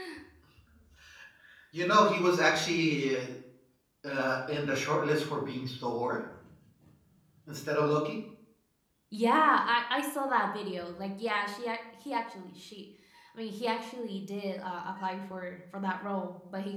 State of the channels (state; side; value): identical; both; correlation 1.00